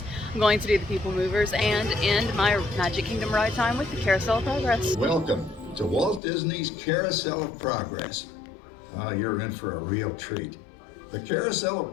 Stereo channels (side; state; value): right; drops out; at 6.2 s